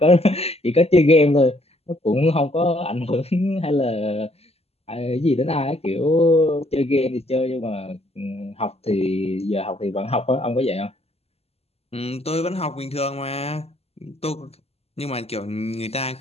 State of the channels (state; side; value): late; right; 0.29 ms